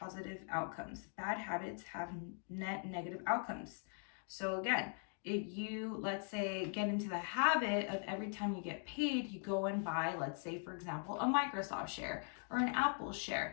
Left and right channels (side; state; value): right; silent; 50 dB below the other